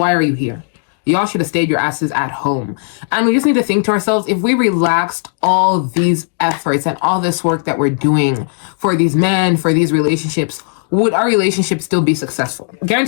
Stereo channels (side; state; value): right; silent; digital silence